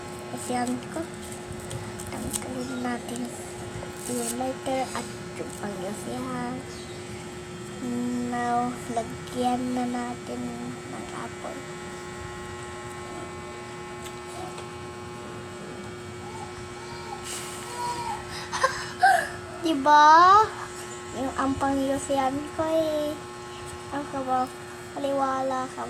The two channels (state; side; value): identical; both; correlation 1.00